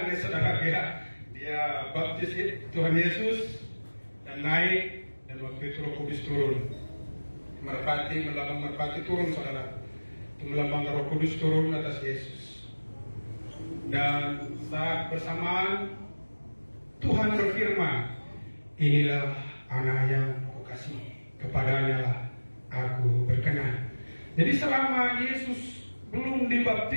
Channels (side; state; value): both; inverted; correlation -1.00